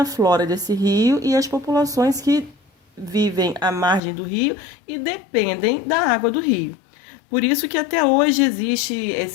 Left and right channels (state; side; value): drops out; right; at 4.0 s